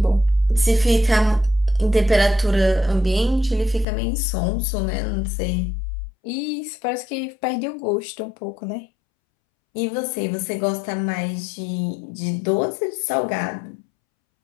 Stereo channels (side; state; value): right; drops out; at 3.9 s